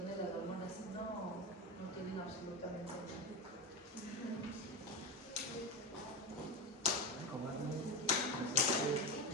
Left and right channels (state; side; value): normal; both; correlation 0.19